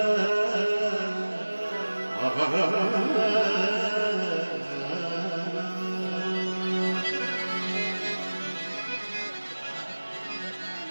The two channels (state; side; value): inverted; both; correlation -1.00